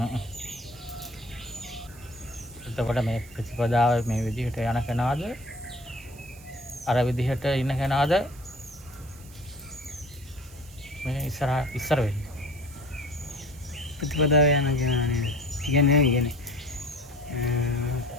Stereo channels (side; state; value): right; noise; hiss, 22 dB below the sound